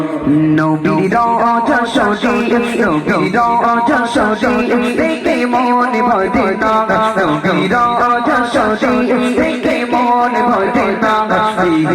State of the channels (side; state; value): both; identical; correlation 1.00